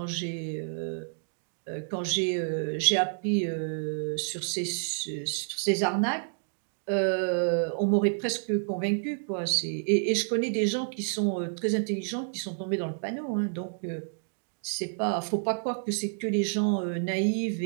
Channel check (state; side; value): silent; left; digital silence